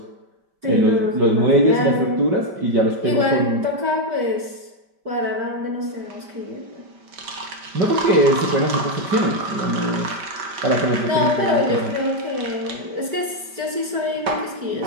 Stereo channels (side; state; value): left; late; 5.1 ms